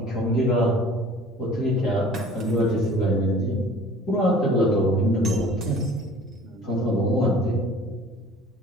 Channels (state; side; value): normal; both; correlation 0.47